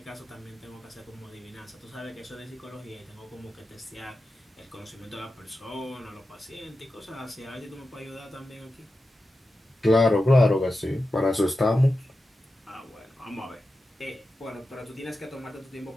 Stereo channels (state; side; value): normal; both; correlation 0.91